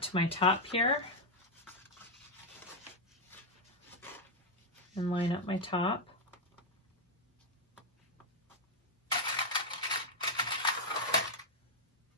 to my top here and line up my top.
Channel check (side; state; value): both; normal; correlation 0.00